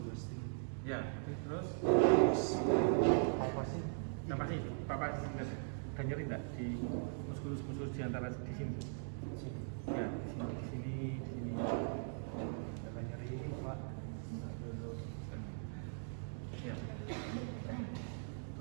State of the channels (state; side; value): silent; left; digital silence